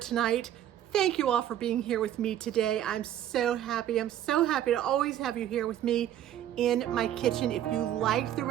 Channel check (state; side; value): quieter; left; 11.4 dB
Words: Thank you all for being here with me today. I'm so happy. I'm so happy to always have you here with me in my kitchen. If you liked the